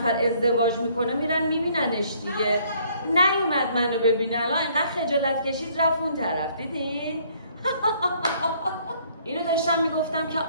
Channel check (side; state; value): both; inverted; correlation -0.63